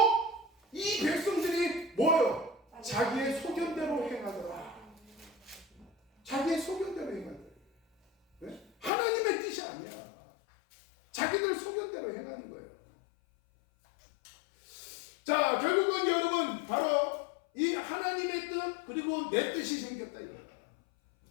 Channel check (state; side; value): drops out; right; at 8.9 s